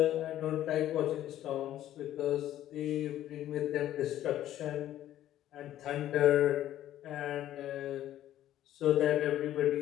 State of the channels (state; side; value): quieter; right; 12.6 dB